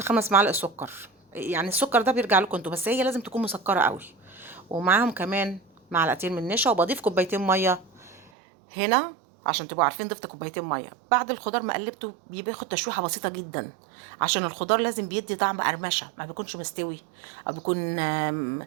5 معالق سكر، يعني السكر ده بيرجع لكم انتوا، بس هي لازم تكون مسكره قوي. ومعاهم كمان معلقتين من نشا، وبضيف كوبايتين ميه هنا عشان تبقوا عارفين. ضفت كوبايتين ميه بعد الخضار ما قلبته، بياخد تشويحه بسيطه جدا عشان الخضار لازم بيدي طعم قرمشه، ما بيكونش مستوي او بيكون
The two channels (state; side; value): drops out; left; at 8.3 s